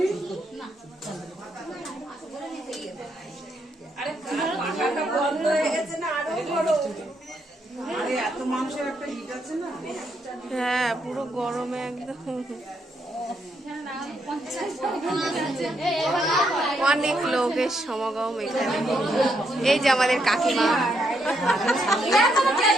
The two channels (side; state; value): both; normal; correlation 0.77